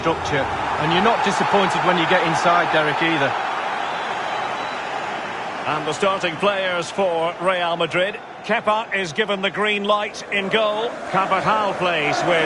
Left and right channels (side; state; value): both; identical; correlation 1.00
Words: and you're not disappointed when you get inside, Derek, either. And the starting players for Real Madrid. Kepa is given the green light in goal. Carvajal plays